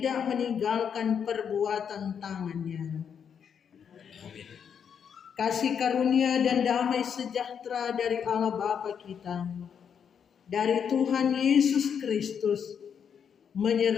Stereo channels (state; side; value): quieter; right; 7.5 dB